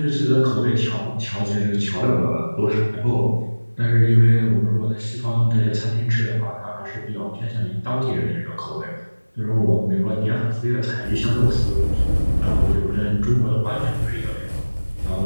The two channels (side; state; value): both; inverted; correlation -1.00